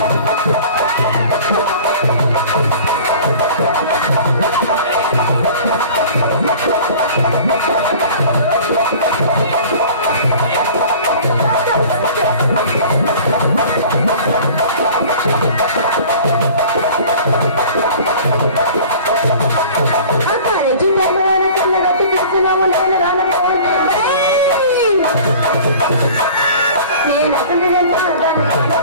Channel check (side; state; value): both; inverted; correlation -0.44